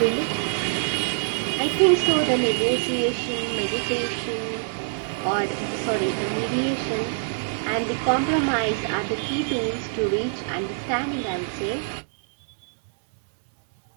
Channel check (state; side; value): silent; left; digital silence